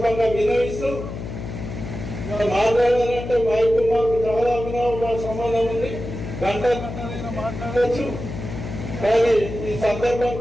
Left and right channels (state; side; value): noise; left; hum, 8 dB below the sound